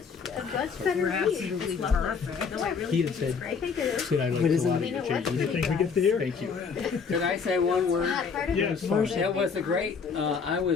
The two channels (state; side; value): quieter; right; 5.7 dB